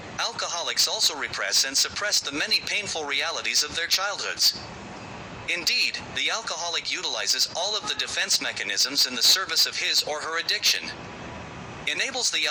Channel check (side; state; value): both; identical; correlation 1.00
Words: Alcoholics also repress and suppress the many painful realities of their childhoods. Indeed, the alcoholic utilizes all of the defense mechanisms in the service of his or her addiction. Enables the